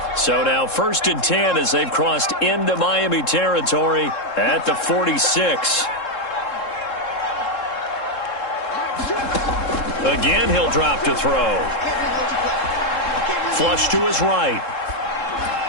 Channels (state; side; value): late; right; 3.7 ms